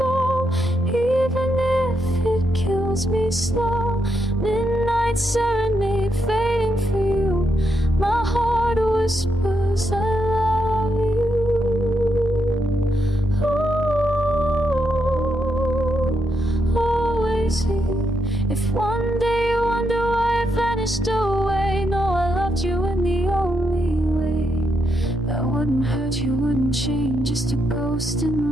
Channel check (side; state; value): both; normal; correlation 0.81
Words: even if it kills me slow. Midnight serenade fading for you. My heart whispers I love you. Ooh, always here. If one day you wonder why I vanished away, know I loved you in the only way that wouldn't hurt you, wouldn't change, just a ghost in